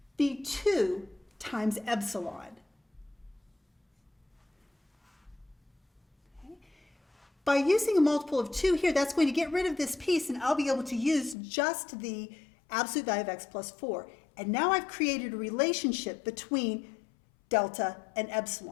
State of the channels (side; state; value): right; drops out; at 11.4 s